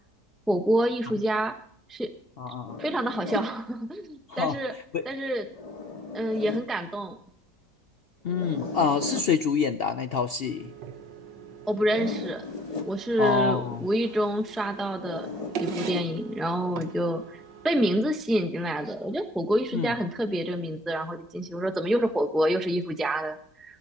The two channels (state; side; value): normal; both; correlation 0.63